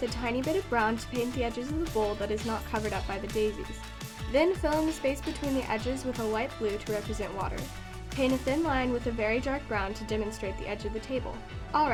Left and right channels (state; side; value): identical; both; correlation 1.00